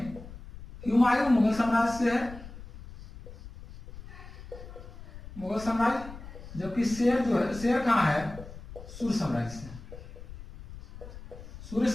हुमायूं मुगल साम्राज्य से है, मुगल साम्राज्य, जबकि शेर जो है, शेर कहाँ है, सूर्य साम्राज्य से, सूर्य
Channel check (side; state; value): left; noise; rumble, 15 dB below the sound